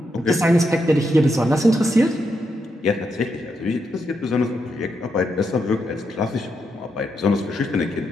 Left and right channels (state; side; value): normal; both; correlation 0.82